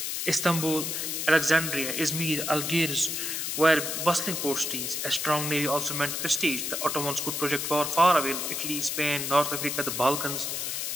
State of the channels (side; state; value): left; noise; hiss, 2 dB below the sound